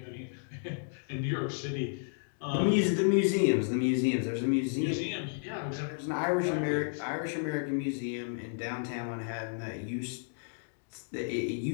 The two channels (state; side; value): silent; right; digital silence